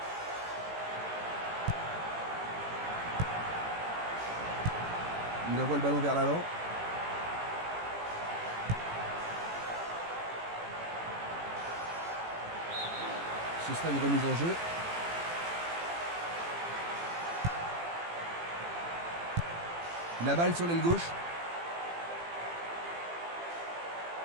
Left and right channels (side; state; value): left; late; 18 ms